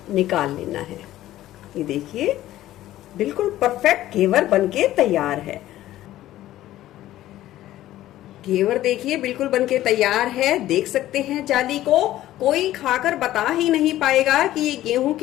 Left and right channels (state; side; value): quieter; right; 14.3 dB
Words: निकाल लेना है। ये देखिए, बिल्कुल परफेक्ट घेवर बनके तैयार है। घेवर देखिए बिल्कुल बनके तैयार है। देख सकते हैं जाली को, कोई खाकर बता ही नहीं पाएगा कि ये गेहूं